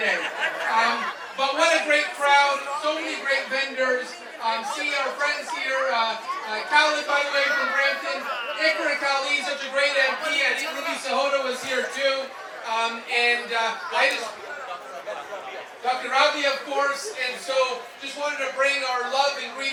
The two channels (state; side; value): identical; both; correlation 1.00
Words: But what a great crowd, so many great vendors. See our friends here, Khalid, by the way, from Brampton. Ikra Kali, such a great MP, and Ruby Sahota was here too. Dr. Ravi, of course, and so just wanted to bring our love and